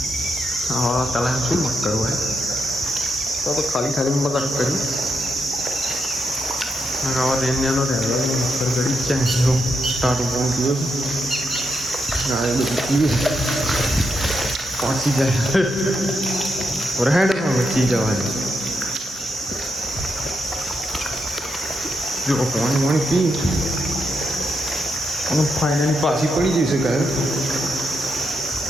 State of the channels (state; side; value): normal; both; correlation 0.81